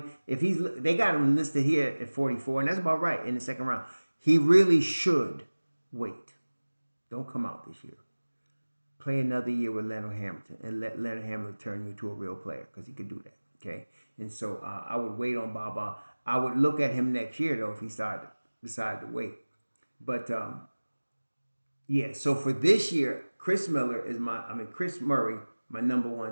they got him listed here at 44, and that's about right in the second round. He really should wait. Don't come out this year. Play another year with Leonard Hamilton and let Leonard Hamilton turn you into a real player, because he could do that. Okay, and so I would wait on Baba. I would look at him next year though if he decided to wait. But yeah, so for this year, Chris Murray, my number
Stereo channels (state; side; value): inverted; both; correlation -1.00